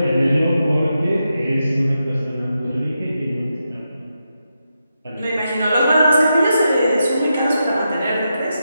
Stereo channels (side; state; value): both; inverted; correlation -0.86